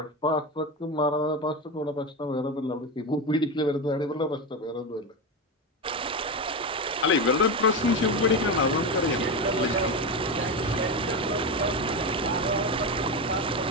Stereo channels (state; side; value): normal; both; correlation 0.17